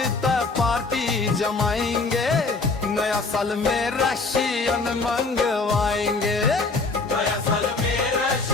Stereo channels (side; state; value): right; quieter; 3.9 dB